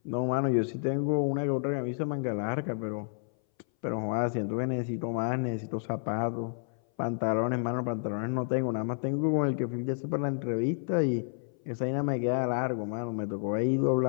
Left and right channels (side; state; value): right; silent; 58 dB below the other